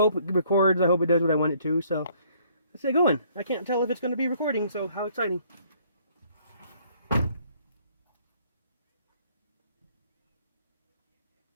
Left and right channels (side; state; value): both; inverted; correlation -0.63